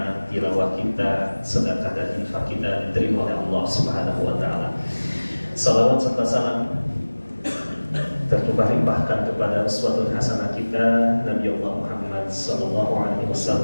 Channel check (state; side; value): inverted; both; correlation -1.00